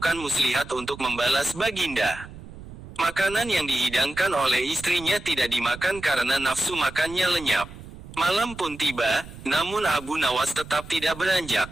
muslihat untuk membalas Baginda. Makanan yang dihidangkan oleh istrinya tidak dimakan karena nafsu makannya lenyap. Malam pun tiba, namun Abu Nawas tetap tidak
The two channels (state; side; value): noise; right; rumble, 15 dB below the sound